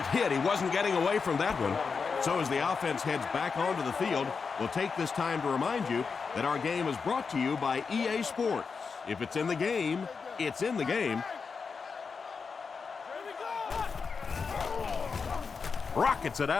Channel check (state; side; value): quieter; right; 5.3 dB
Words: hit. He wasn't getting away from that one. So as the offense heads back onto the field, we'll take this time to remind you that our game is brought to you by EA Sports. If it's in the game, it's in the game. Rockets it